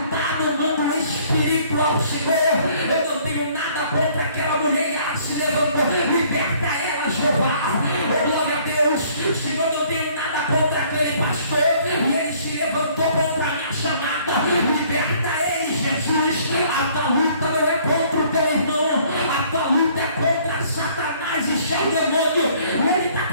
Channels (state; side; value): inverted; both; correlation -0.59